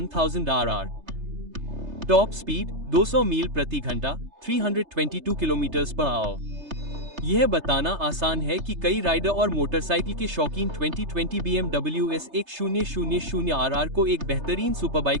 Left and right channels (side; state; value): left; late; 3.3 ms